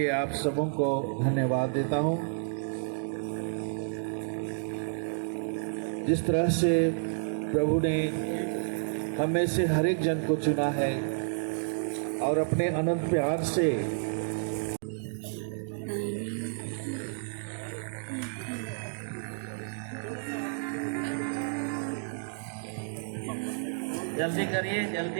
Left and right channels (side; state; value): left; silent; digital silence